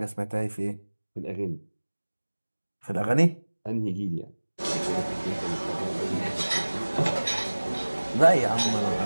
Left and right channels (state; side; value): inverted; both; correlation -1.00